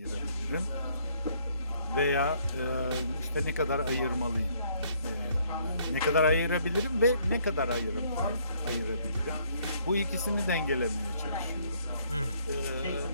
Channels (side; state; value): both; inverted; correlation -0.66